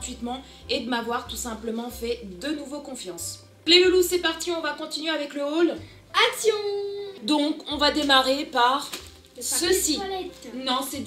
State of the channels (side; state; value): both; identical; correlation 1.00